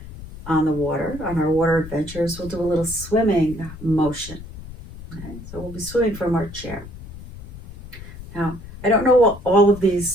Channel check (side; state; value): left; noise; rumble, 14 dB below the sound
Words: on the water, on our water adventures, we'll do a little swimming motion. Okay? So we'll be swimming from our chair. Now, I don't know what all of